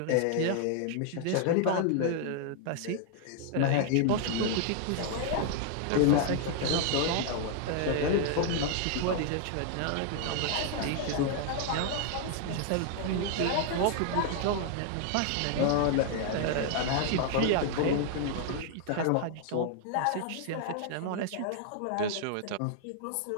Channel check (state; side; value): different; both; correlation 0.00